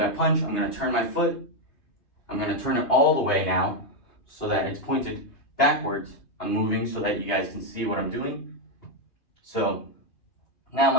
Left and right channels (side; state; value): right; late; 3.3 ms